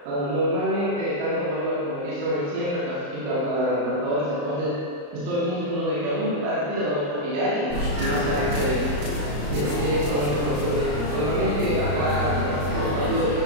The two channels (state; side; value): late; left; 34 ms